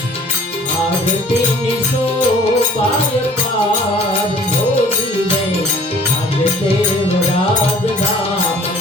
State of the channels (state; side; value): normal; both; correlation 0.52